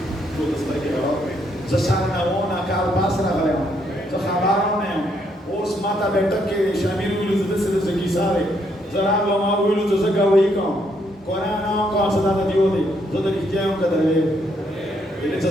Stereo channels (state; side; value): normal; both; correlation 0.73